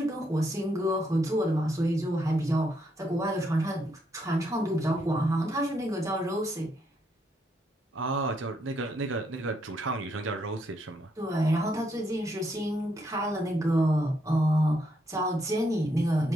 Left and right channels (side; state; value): both; normal; correlation 0.76